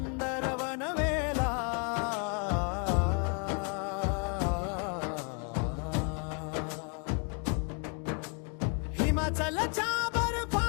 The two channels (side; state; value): right; quieter; 36.6 dB